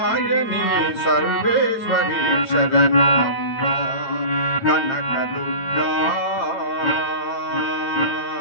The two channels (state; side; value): late; right; 9.0 ms